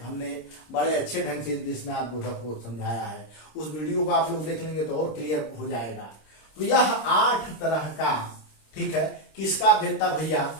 हमने बड़े अच्छे ढंग से विस्मयादि बोधक को समझाया है। उस वीडियो को आप लोग देख लेंगे तो और क्लियर हो जाएगा। तो यह 8 तरह का, ठीक है, किसका भेद था भैया?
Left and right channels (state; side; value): late; right; 26 ms